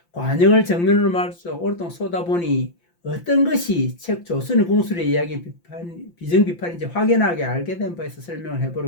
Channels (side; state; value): right; late; 5.8 ms